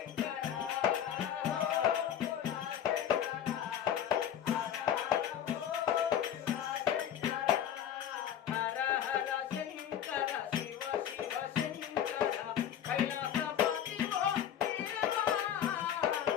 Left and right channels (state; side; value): quieter; right; 9.8 dB